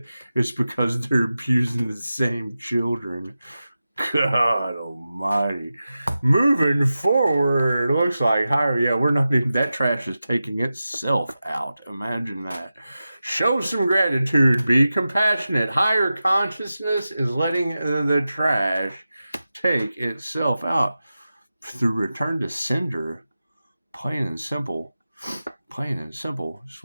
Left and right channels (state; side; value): inverted; both; correlation -0.93